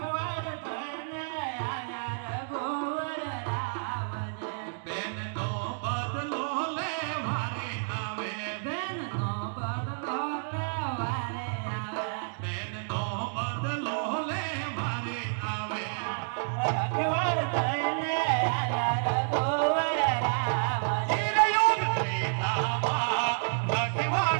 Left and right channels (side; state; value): left; silent; digital silence